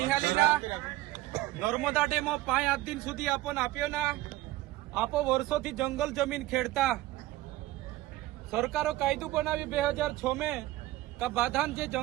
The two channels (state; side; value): quieter; left; 17.1 dB